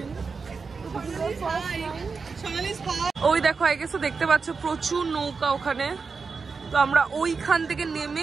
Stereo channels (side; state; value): left; quieter; 4.9 dB